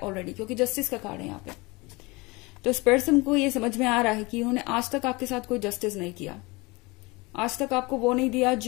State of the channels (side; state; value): right; quieter; 24.8 dB